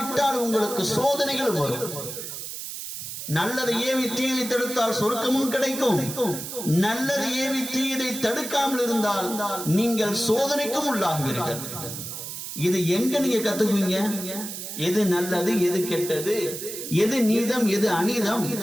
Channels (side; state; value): right; noise; hiss, 8 dB below the sound